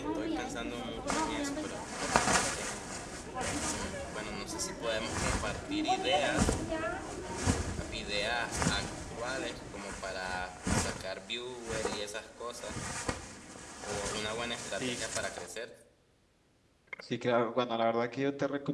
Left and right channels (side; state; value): both; identical; correlation 1.00